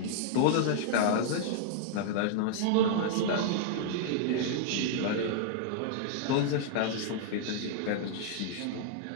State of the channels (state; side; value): different; both; correlation -0.01